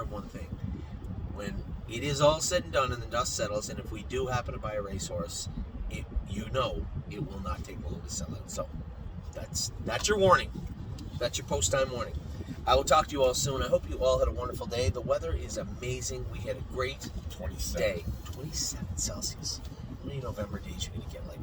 of one thing. When it is all said and done and the dust settles, and if we do happen to buy a racehorse, it will not take long to sell out. So that's your warning. That's your post-time warning. I will talk to you all soon. I hope you all had a wonderful day. The weather is amazing. We had a great 27. day. 27 Celsius. How many November days you're going to get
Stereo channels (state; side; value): identical; both; correlation 1.00